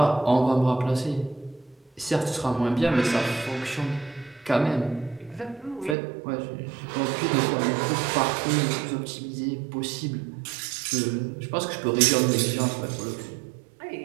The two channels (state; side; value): drops out; left; at 6.0 s